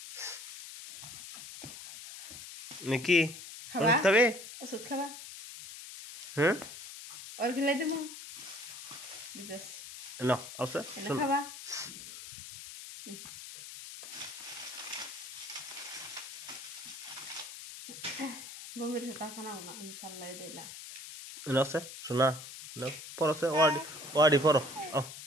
নাকি ওষুধ খাবে ওষুধ খাবা হ্যাঁ আর খেলাই দেবো ন আছে খাবা বমির টাকা নাও না ইনশাল্লাহ এটাই লাস্ট আছে শোনা পড়ছে ওয়ার্ডি পড়ো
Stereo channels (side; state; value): left; noise; hiss, 12 dB below the sound